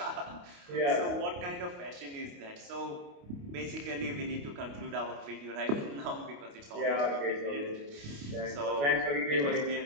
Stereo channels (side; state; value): left; late; 28 ms